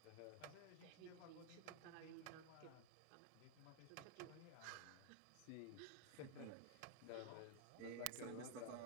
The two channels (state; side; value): different; both; correlation 0.00